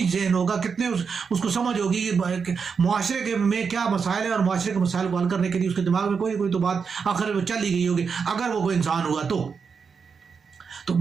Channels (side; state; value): left; quieter; 5.8 dB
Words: ذہن ہوگا, کتنے اس کو سمجھ ہوگی کہ معاشرے کے میں کیا مسائل ہیں, اور معاشرے کے مسائل کو حل کرنے کے لیے اس کے دماغ میں کوئی تو بات آخر وہ چل ہی گئی ہوگی اگر وہ کوئی انسان ہوا تو